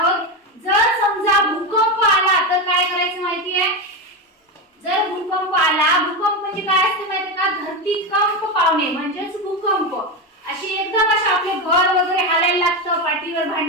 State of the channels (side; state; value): both; normal; correlation 0.15